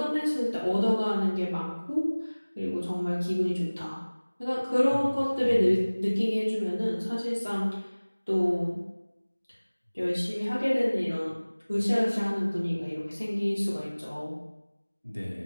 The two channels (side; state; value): both; inverted; correlation -1.00